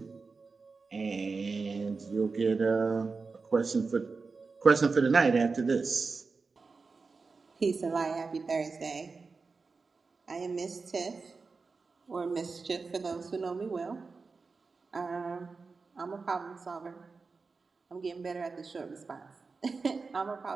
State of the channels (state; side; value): quieter; left; 4.4 dB